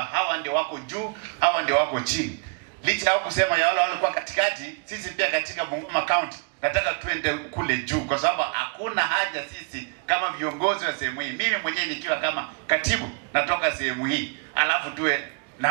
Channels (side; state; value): left; quieter; 35.5 dB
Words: hawa ndio wako juu, hawa ndio wako chini. Licha ya kusema ya wale walikuwa katikati, sisi pia katika Bungoma County nataka tuende kule juu, kwa sababu hakuna haja sisi kama viongozi wa sehemu hii, mimi mwenyewe nikiwa kama katibu natoka sehemu hii, alafu tuwe